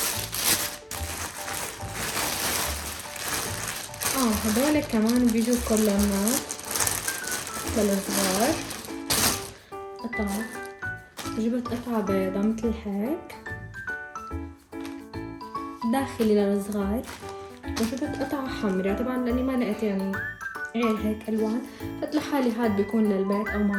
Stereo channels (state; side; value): identical; both; correlation 1.00